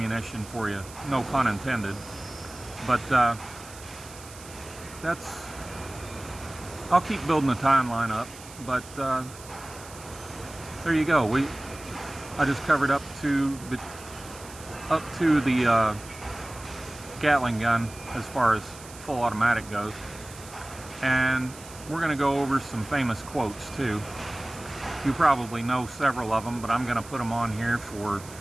for you, no pun intended. But I'll keep building the timeline up. But there you go. I just covered up to the Gatling gun as far as full automatic goes, and we're going to go over some famous quotes too. You probably know several of them, but I'm going to put them on here for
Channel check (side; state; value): right; noise; hiss, 17 dB below the sound